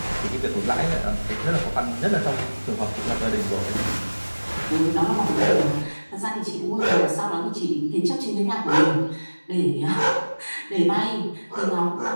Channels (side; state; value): both; inverted; correlation -1.00